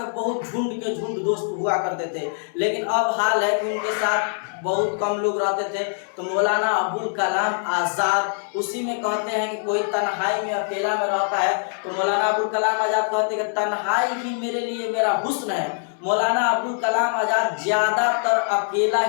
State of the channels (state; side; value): silent; right; digital silence